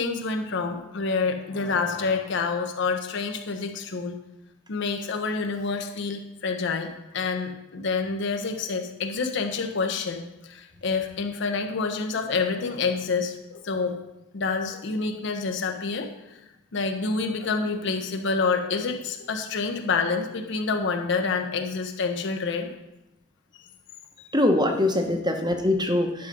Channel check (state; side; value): quieter; right; 3.4 dB